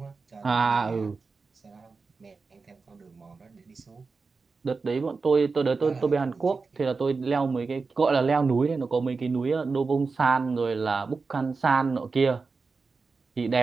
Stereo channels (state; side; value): quieter; left; 4.4 dB